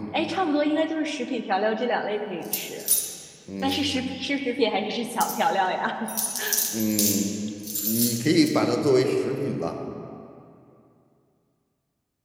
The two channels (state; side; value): identical; both; correlation 1.00